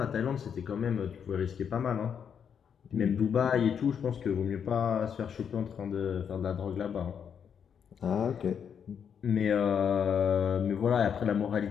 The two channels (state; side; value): quieter; right; 7.6 dB